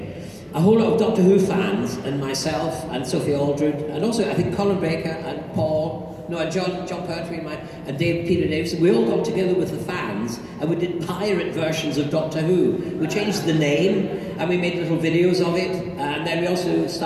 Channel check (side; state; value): both; identical; correlation 1.00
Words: a whole lot of Doctor Who fans, and myself, and Sophie Aldred, and also I think Colin Baker and John Pertwee and Peter Davison, we all got together with the fans and we did pirate versions of Doctor Who. We changed the name and we made little videos of it, and then we also